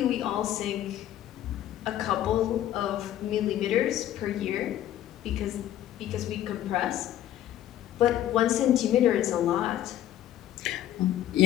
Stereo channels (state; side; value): quieter; right; 12.2 dB